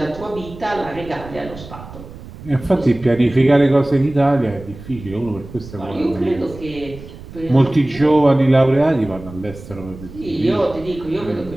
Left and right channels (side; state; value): right; noise; rumble, 16 dB below the sound